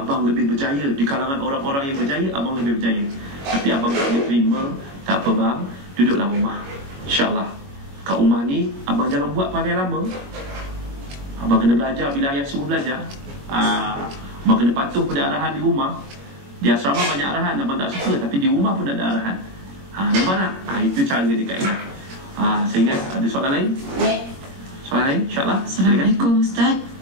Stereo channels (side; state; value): left; late; 22 ms